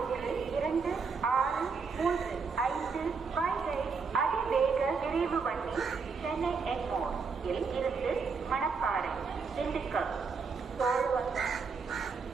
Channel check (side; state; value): left; quieter; 5.1 dB